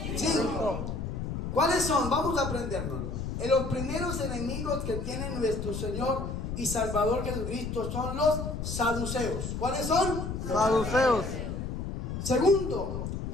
5. ¿Cuáles son? Vamos a aprendernos. Los primeros enemigos que tiene nuestro Señor y Salvador Jesucristo son los saduceos. ¿Cuáles son? Saduceos. Segundo,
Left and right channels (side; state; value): left; noise; rumble, 4 dB below the sound